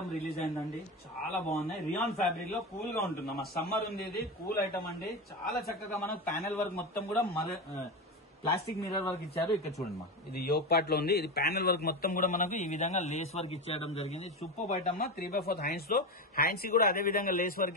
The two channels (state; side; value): normal; both; correlation 0.19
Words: రిలీజ్ అయిందండి. చాలా బాగున్నాయి. రియాన్ ఫ్యాబ్రిక్ లో కూల్ గా ఉంటుంది మా. సమ్మర్ ఉంది. ఇది కూల్ ఐటమ్ అండి. చాలా చక్కగా మనకు ప్యానెల్ వర్క్ మొత్తం కూడా ప్లాస్టిక్ మిర్రర్ వర్క్ ఇచ్చారు. ఇక్కడ చూడండి మా. ఇది యోక్ పార్ట్ లో ఉంది. ఇది ప్యానెల్ వర్క్ మొత్తం కూడా మనకు ఈ విధంగా లేస్ వర్క్ ఇచ్చేయడం జరిగింది. సూపర్ ఐటమ్ మా. 3/4 హ్యాండ్స్ లో హ్యాండ్స్ కూడా అదే విధంగా లేస్